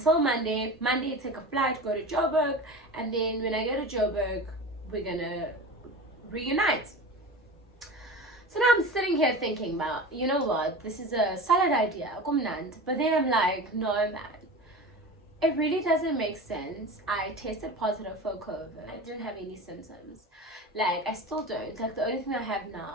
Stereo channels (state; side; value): normal; both; correlation 0.32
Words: Monday. Monday, take a flight, go to Joburg, and then when I go to Joburg, we're gonna reunite. So now I'm sitting here thinking about, you know what, this is a solid idea, but then I'm like, no man, it really doesn't make sense. I tested positive for COVID. I didn't have any symptoms. Like, I still don't. Like, the only thing I have